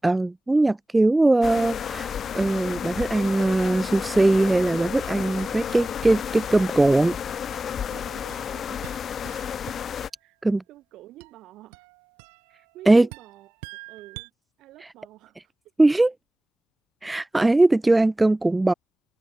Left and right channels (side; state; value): both; normal; correlation 0.97